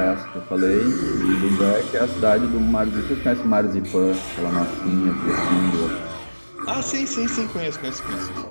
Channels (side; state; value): both; inverted; correlation -1.00